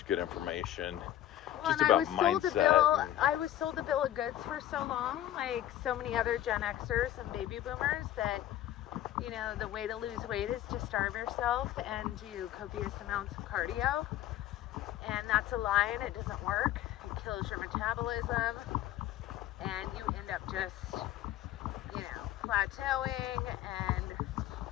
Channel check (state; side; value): quieter; right; 12.7 dB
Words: good information just about mindset. I was sold a bill of goods for so long, like so many other Gen Xers and baby boomers, that, the way to lose weight is to starve yourself and do copious amounts of cardio. And that's a lie, and it doesn't work. It kills your metabolism, and you end up just, plateauing,